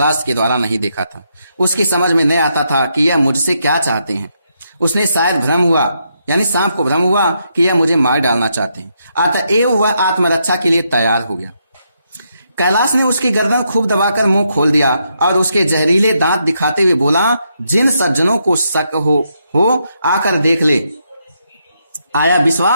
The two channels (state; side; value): inverted; both; correlation -0.79